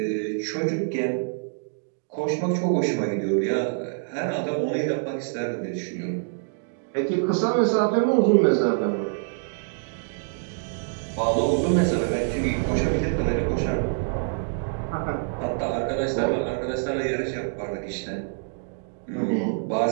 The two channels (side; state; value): left; silent; digital silence